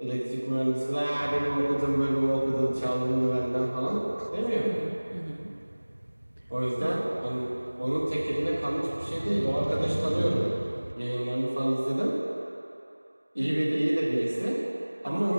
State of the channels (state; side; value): inverted; both; correlation -1.00